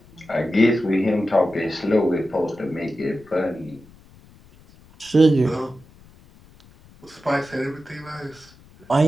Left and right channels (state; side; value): noise; left; rumble, 26 dB below the sound